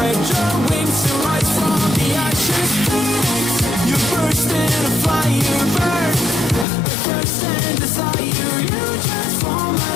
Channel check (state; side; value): drops out; right; at 6.7 s